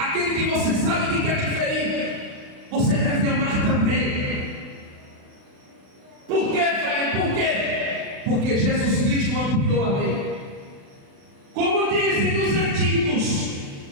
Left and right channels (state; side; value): late; left; 36 ms